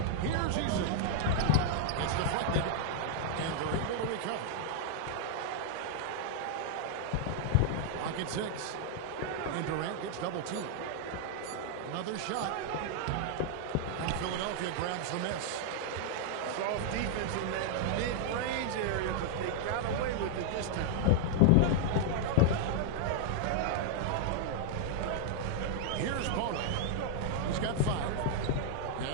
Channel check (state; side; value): different; both; correlation -0.01